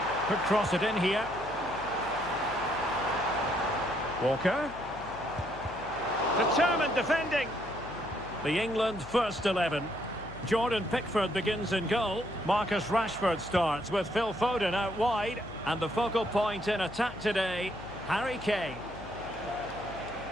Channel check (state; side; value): noise; left; hum, 16 dB below the sound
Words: Could cross it in here. Walker. Determined defending. The England first 11. Jordan Pickford begins in goal. Marcus Rashford starts with Phil Foden out wide. And the focal point in attack today, Harry Kane.